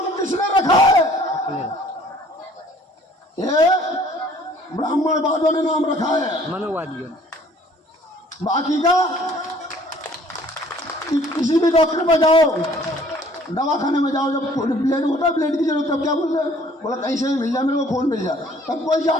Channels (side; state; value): both; normal; correlation 0.56